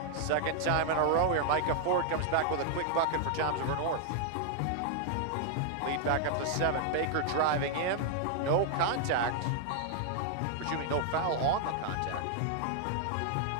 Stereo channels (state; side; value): different; both; correlation 0.00